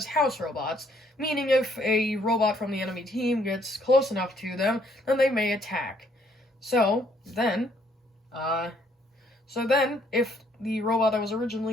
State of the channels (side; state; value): both; normal; correlation 0.67